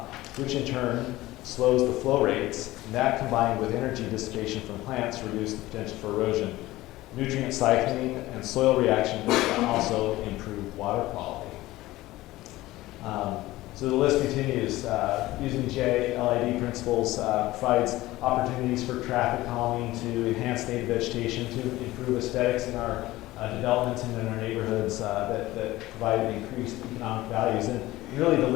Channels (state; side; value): quieter; right; 17.6 dB